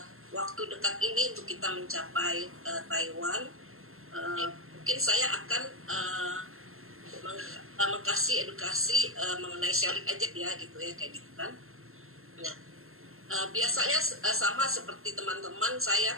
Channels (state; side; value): late; left; 0.62 ms